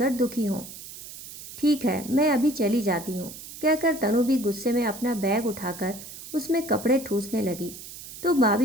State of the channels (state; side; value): noise; right; hiss, 13 dB below the sound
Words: दुखी हों। ठीक है, मैं अभी चली जाती हूँ, कहकर तनु भी गुस्से में अपना बैग उठाकर उसमें कपड़े ठूसने लगी तो